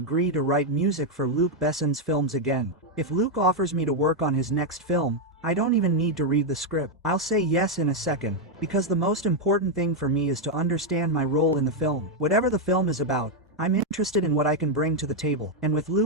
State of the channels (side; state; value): both; normal; correlation 0.01